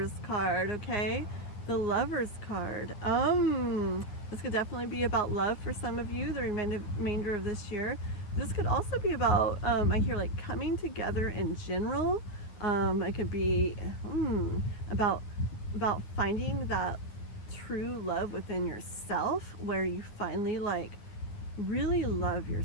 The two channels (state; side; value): late; right; 9.5 ms